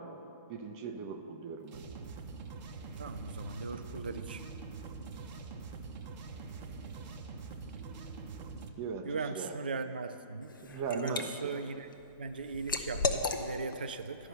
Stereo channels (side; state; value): both; inverted; correlation -0.42